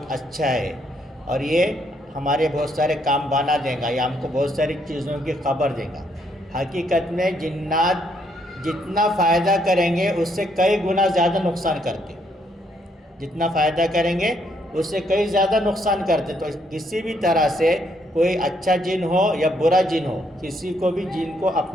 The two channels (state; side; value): normal; both; correlation 0.72